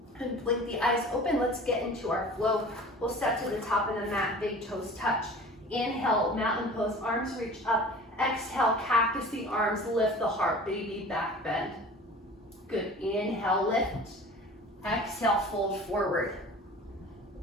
And blink the eyes open. Let's get into our flow. We'll step to the top of the mat, big toes touch. Inhale, mountain pose, arms reach up. Exhale, cactus the arms, lift the heart, baby back bend. Good, inhale, lift. Exhale, fold forward.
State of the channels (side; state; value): both; normal; correlation 0.41